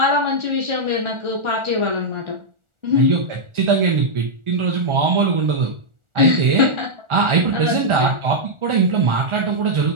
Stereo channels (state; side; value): late; left; 1.4 ms